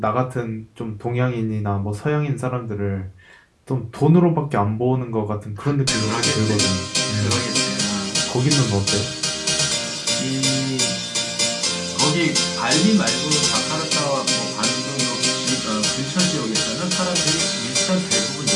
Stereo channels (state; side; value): identical; both; correlation 1.00